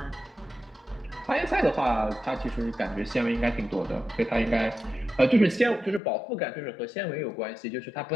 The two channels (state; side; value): drops out; right; at 6.0 s